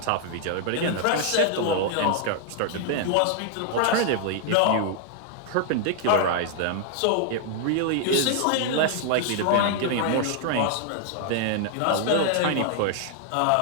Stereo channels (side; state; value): both; different; correlation -0.01